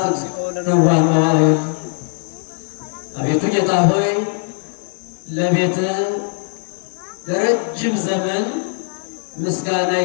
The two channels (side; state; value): right; silent; 63 dB below the other